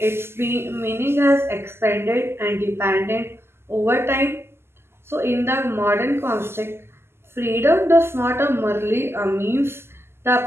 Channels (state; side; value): late; left; 0.12 ms